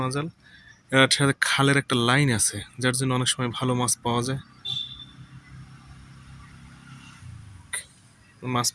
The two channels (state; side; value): identical; both; correlation 1.00